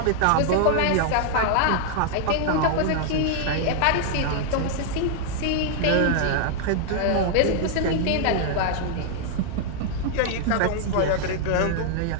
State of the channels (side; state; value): both; different; correlation 0.00